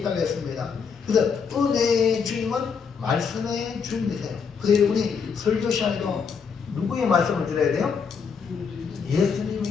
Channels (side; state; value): right; quieter; 6.0 dB